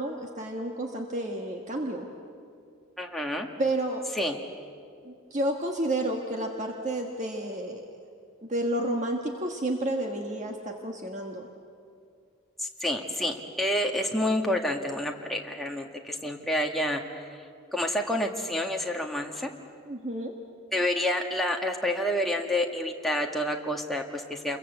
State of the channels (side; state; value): both; normal; correlation 0.52